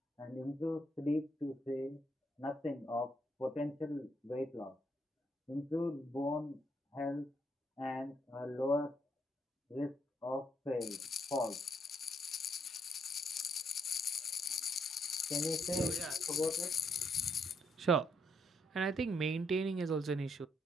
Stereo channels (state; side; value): normal; both; correlation 0.74